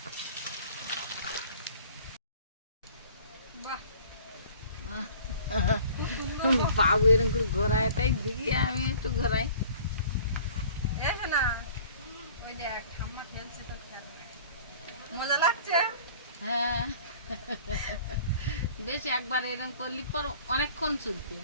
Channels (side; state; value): both; inverted; correlation -0.49